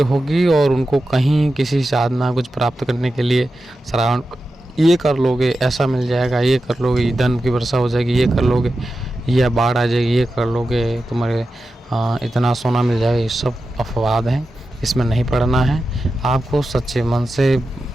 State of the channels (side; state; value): both; normal; correlation 0.91